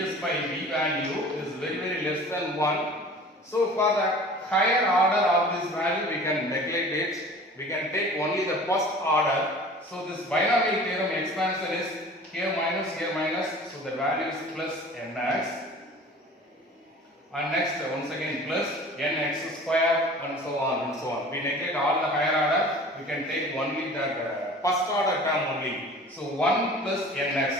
by V value is very less than 1. So for the higher order of this value we can neglect it. We can take only the first order. So this binomial theorem expansion is here minus, so the value is plus nx, and next once again plus nx square, and so on and so on. We neglect all the higher order, we can take only the first order term only. So 1 plus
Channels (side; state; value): both; normal; correlation 0.44